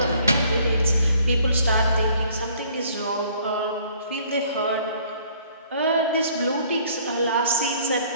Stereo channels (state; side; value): inverted; both; correlation -0.59